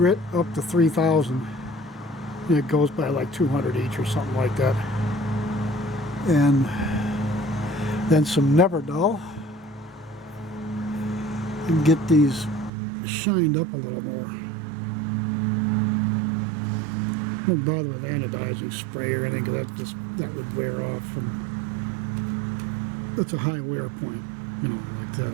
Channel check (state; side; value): drops out; left; at 12.7 s